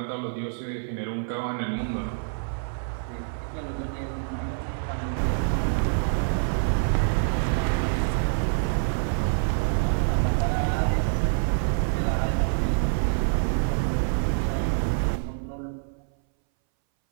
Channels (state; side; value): silent; left; 61 dB below the other